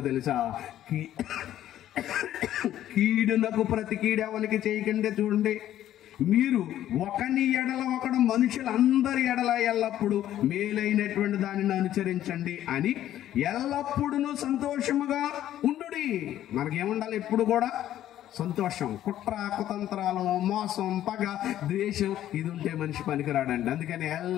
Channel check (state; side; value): quieter; right; 12.3 dB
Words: తెలుసా? కీడునకు ప్రతి కీడు ఎవరికి చేయకండి. చూడండి, మీరు ఒకని ఎడల ఒకడు మనుషులందరి ఎడల ఎల్లప్పుడూ మేలైనటువంటి దానిని అనుసరించండి అని ఎల్లప్పుడూ సంతోషముగా ఉండుడి. మనకేముండాలి? ఎప్పుడు కూడా సంతోషం. కుట్ర, కుతంత్రాలు, మోసం, పగ, ద్వేషం ఇది ఉంటే మనిషి పనికిరాడండి. అందుకని